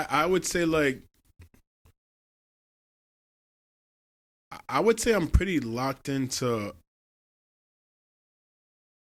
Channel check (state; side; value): identical; both; correlation 1.00